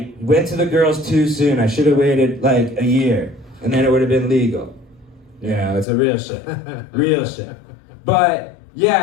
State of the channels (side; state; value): right; drops out; at 5.9 s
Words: went to the girls too soon. I should have waited like a year, and then it would have been legal. It's a real shame. But